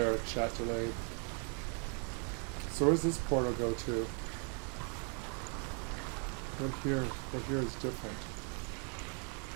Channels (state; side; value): quieter; left; 38.3 dB